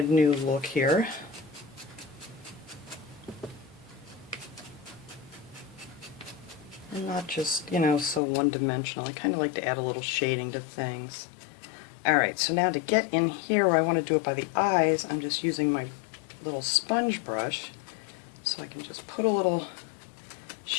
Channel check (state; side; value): drops out; right; at 8.2 s